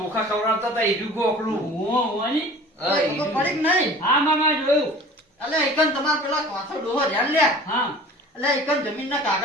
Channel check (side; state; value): both; normal; correlation 0.43